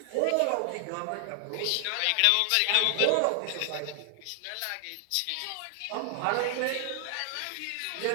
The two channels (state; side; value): different; both; correlation 0.00